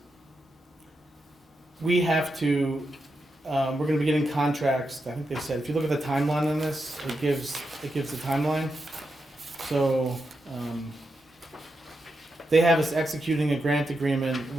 we have to, we're gonna be getting contracts, I think they said, if you look at the timeline on this, it gives the timeline. So, they have us executing a grant agreement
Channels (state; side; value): normal; both; correlation 0.86